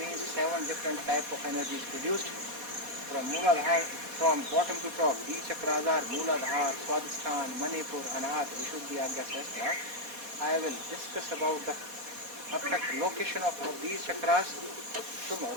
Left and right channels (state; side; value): late; left; 4.2 ms